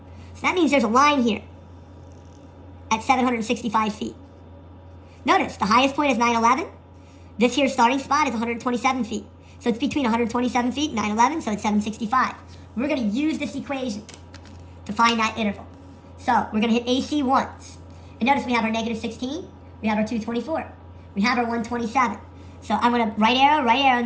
that means there's a line here at 765 feet. Notice, the highest point is 911. This here starting spot is 127 feet. So it's between 127 feet and 911, so it's 765. We're going to use this equation to find that interval. So we're going to hit AC once. And notice we have our negative 16, we have our 224, we have our 127. So I'm going to right arrow,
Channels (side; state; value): both; identical; correlation 1.00